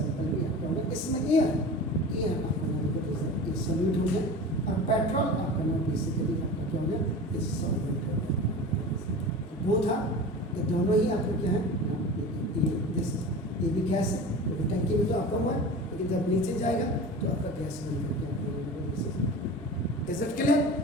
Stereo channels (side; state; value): both; normal; correlation 0.34